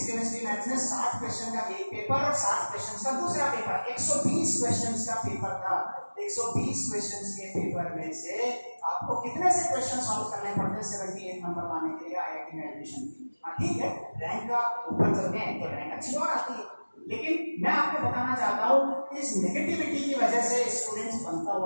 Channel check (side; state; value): both; inverted; correlation -1.00